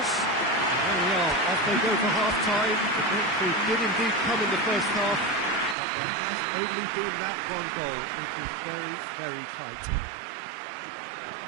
There we are, off they go for half-time. The victory did indeed come in the first half, but there has only been that one goal. It is very, very tight.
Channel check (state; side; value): drops out; left; at 5.8 s